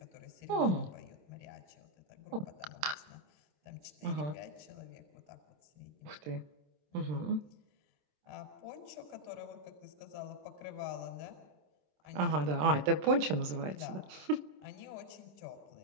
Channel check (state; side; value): late; left; 27 ms